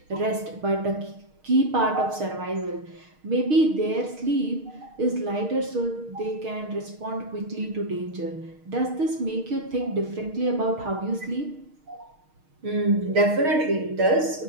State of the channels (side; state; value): left; late; 6.5 ms